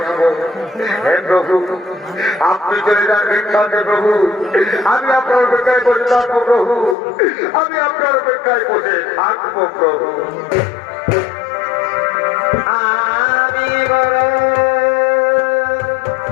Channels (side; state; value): right; drops out; at 7.0 s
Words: হে প্রভু, আপনি চলে যান ভিক্ষাতে প্রভু, আমি আপনার অপেক্ষায় বসে থাকবো প্রভু, আমি আপনার অপেক্ষায় বসে থাকবো প্রভু। আমি বড়